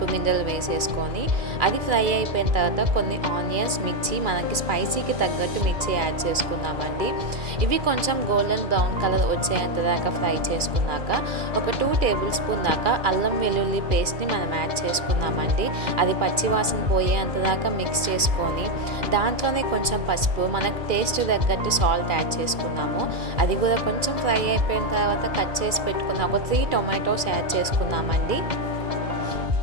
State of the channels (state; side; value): late; left; 2.3 ms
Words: గింజలు వేసేసుకొని అది ఫ్రై అయిపోయిన తర్వాత కొన్ని ఆనియన్స్, మిర్చి, మనకి స్పైసీకి తగ్గట్టు మిర్చి యాడ్ చేసుకుందామండి. ఇవి కొంచెం గోల్డెన్ బ్రౌన్ కలర్ వచ్చేంత దాకా ఫ్రై చేసుకున్నాక ఒక 2 టేబుల్ స్పూన్ దాకా అల్లం వెల్లుల్లి పేస్ట్ని మనం యాడ్ చేసుకుందామండి. అది పచ్చివాసన పోయేంత దాకా మిక్స్ చేసుకొని దాంట్లోనే కొంచెం పసుపు, మనకు టేస్ట్ తగ్గట్టు సాల్ట్ యాడ్ చేసుకుందాం. అది కూడా కొంచెం ఫ్రై అయిపోయిన తర్వాత కట్ చేసి పెట్టుకున్న ఒక 3 టొమాటోస్ యాడ్ చేసుకుందామండి.